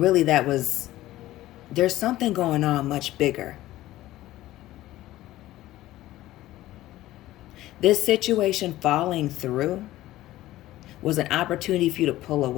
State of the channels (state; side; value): quieter; right; 15.6 dB